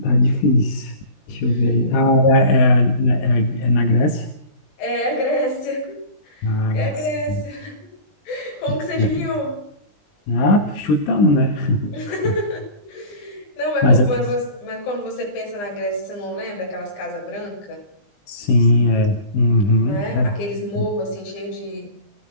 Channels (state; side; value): late; right; 20 ms